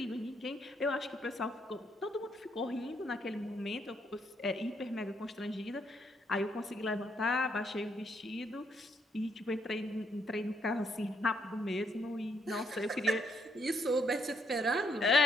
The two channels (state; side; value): normal; both; correlation 0.74